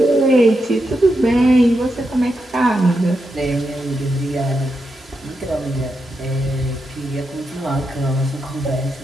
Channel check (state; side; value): normal; both; correlation 0.85